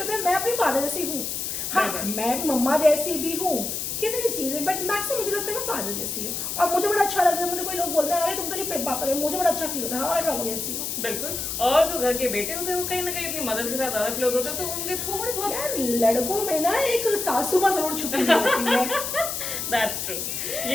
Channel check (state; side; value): noise; left; hiss, 3 dB below the sound